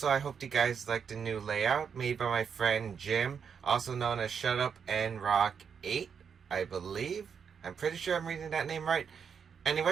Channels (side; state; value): left; quieter; 6.9 dB